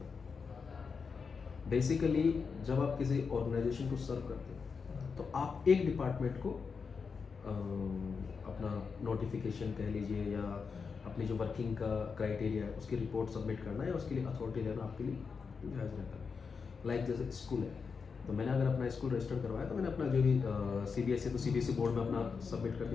बेसिकली जब आप किसी ऑर्गेनाइजेशन को सर्व करते हो तो आप एक डिपार्टमेंट को अपना नोटिफिकेशन कह लीजिए या अपनी जो वर्किंग का क्राइटेरिया है उसकी रिपोर्ट सबमिट करना है, या उसके लिए अथॉरिटी लेना आपके लिए जायज़ रहता है। लाइक जैसे स्कूल है, तो मैंने अगर अपना स्कूल रजिस्टर करवाया तो मैंने अपना जो भी CBSE तो CBSE बोर्ड में अपना सबमिट कर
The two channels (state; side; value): quieter; right; 5.4 dB